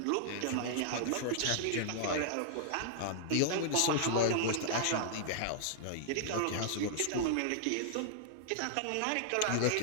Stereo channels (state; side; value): different; both; correlation -0.01